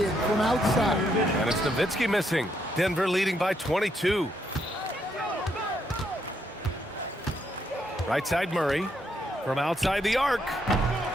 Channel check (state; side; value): normal; both; correlation 0.76